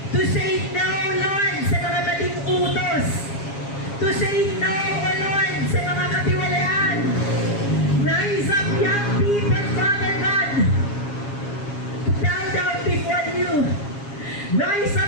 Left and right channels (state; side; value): late; right; 7.4 ms